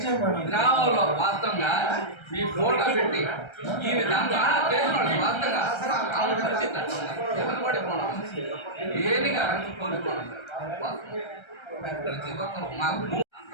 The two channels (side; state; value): right; late; 1.3 ms